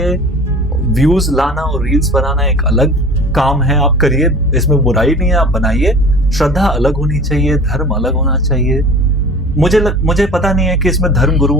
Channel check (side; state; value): both; normal; correlation 0.42